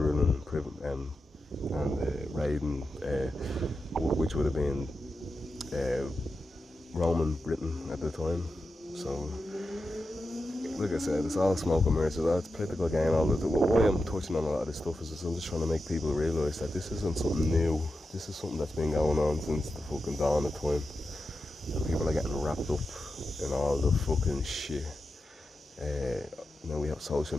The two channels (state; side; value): normal; both; correlation 0.90